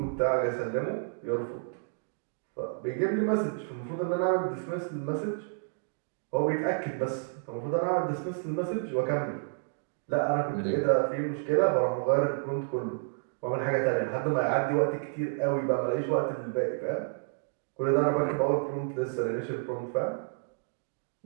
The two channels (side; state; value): left; silent; digital silence